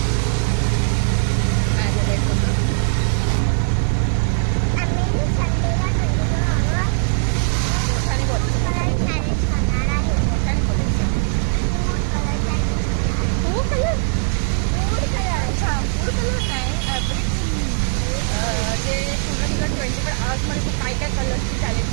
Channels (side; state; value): left; silent; digital silence